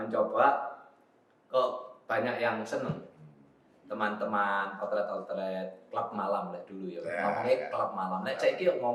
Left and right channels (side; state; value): both; identical; correlation 1.00